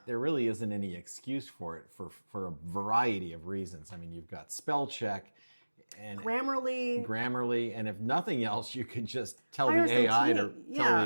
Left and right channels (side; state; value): both; inverted; correlation -1.00